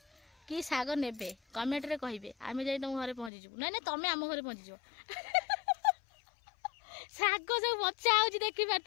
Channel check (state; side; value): drops out; right; at 3.3 s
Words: कि साग नेबे कमेंट रे कहिबे। आमे जाई तुम घरे पहुंची जबु। नै नै तमे आम घरे पहुंची जबो। साग सब बच्चा आउची देखि